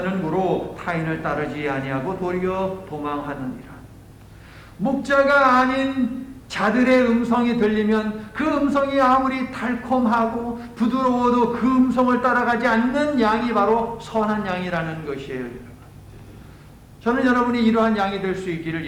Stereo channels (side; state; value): both; identical; correlation 1.00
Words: 고로 타인을 따르지 아니하고 도리어 도망하느니라. 목자가 아닌 자들의 음성이 들리면 그 음성이 아무리 달콤하고 부드러워도 그 음성을 따라가지 않는 양이 바로 선한 양이라는 것이에요, 여러분. 저는 여러분이 이러한 양이 될 수 있기를